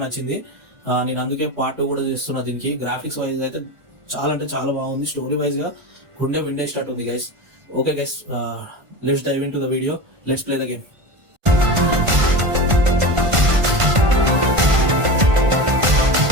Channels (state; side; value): late; left; 1.5 ms